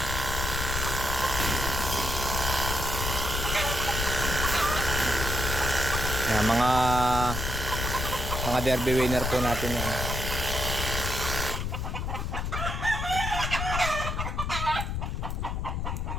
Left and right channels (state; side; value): noise; left; rumble, 2 dB below the sound